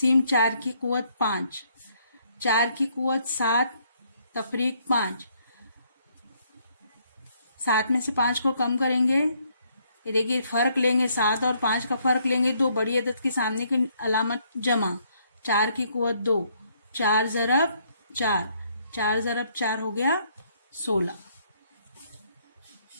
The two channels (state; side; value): inverted; both; correlation -0.69